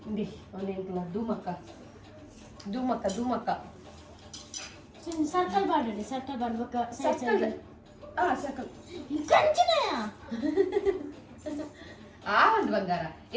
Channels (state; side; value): identical; both; correlation 1.00